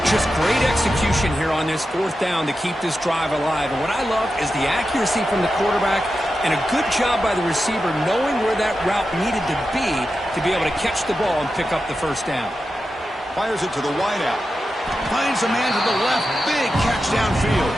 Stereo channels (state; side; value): normal; both; correlation 0.90